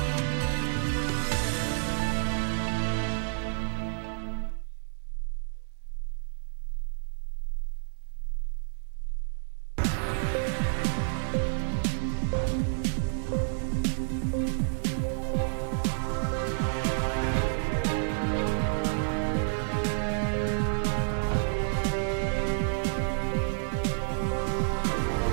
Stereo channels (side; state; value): left; silent; digital silence